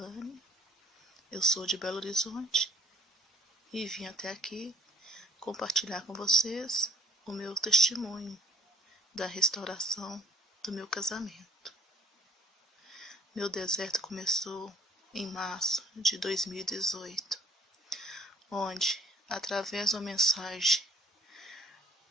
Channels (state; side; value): normal; both; correlation 0.58